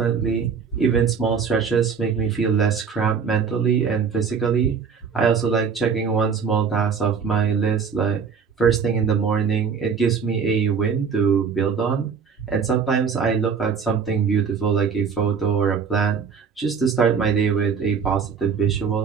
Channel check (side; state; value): left; quieter; 6.1 dB